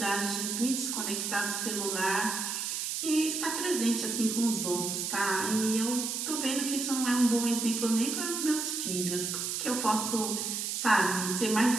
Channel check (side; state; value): right; noise; hiss, 2 dB below the sound